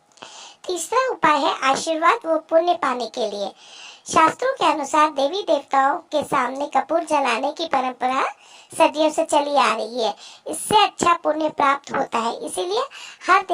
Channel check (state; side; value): identical; both; correlation 1.00